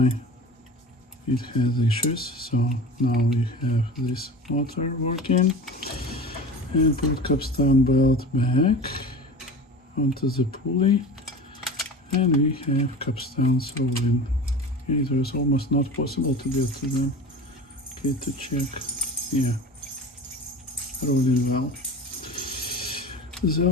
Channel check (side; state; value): both; normal; correlation 0.35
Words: it has issues. So now we have this motor working. And put capstan belt back onto the pulley. And we have capstans rolling. It was almost not possible to get to them. Okay, to check. Yeah, rolling well. The